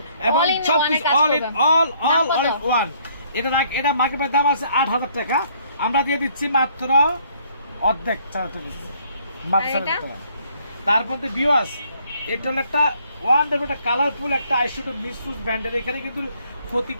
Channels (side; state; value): both; inverted; correlation -0.64